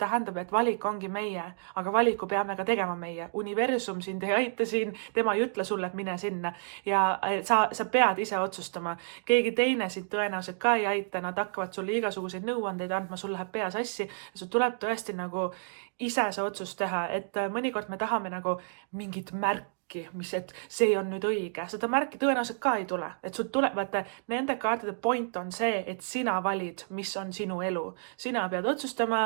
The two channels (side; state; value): left; silent; digital silence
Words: et valik ongi meie, aga valiku peame ka tegema meie. Universum sind ei aita siin, tema ei ütle sulle, et mine sinna. Ja sa pead ise otsustama. Keegi teine sind tõenäoliselt ka ei aita, nad hakkavad sulle igasuguseid nõuandeid andma, sul läheb pea sassi. Sul tuleb tõesti nagu ise see otsus teha, et mõnikord me tahame nagu mingit märki märki, et see on nüüd õige. Seda märki tõenäoliselt ka ei tule. Et sul tuleb, vaata, nende kaartide point on see, et sina valid, mis on sinu elu. Sina pead